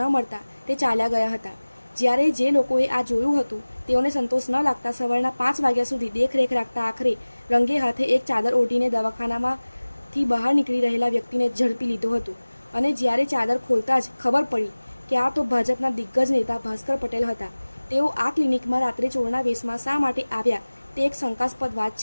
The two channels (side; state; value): both; inverted; correlation -1.00